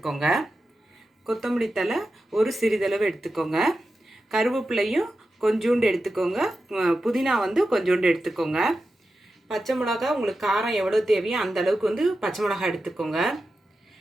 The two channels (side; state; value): both; normal; correlation 0.91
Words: கொத்தமல்லி தழை ஒரு சிறிதளவு எடுத்துக்கோங்க. கருவேப்பிலையும் கொஞ்சோண்டு எடுத்துக்கோங்க. புதினா வந்து கொஞ்சோண்டு எடுத்துக்கோங்க. பச்சை மிளகா உங்களுக்கு காரம் எவ்வளோ தேவையோ அந்த அளவுக்கு வந்து பச்சை மிளகா எடுத்துக்கோங்க.